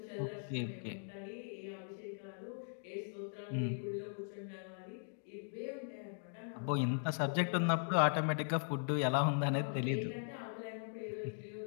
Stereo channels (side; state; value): right; silent; digital silence